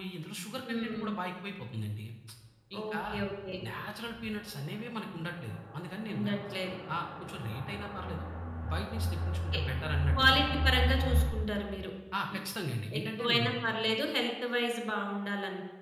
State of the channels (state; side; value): identical; both; correlation 1.00